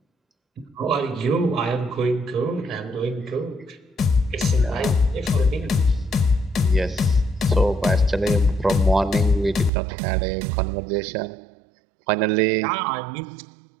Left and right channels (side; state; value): left; drops out; at 9.7 s